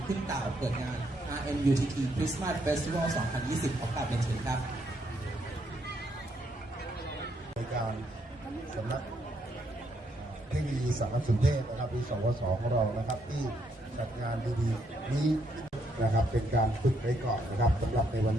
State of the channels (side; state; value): both; normal; correlation 0.74